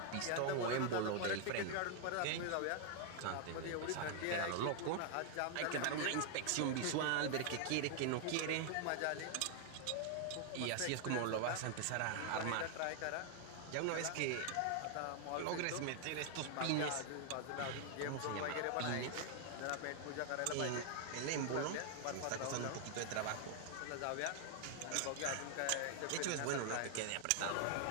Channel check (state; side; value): different; both; correlation 0.00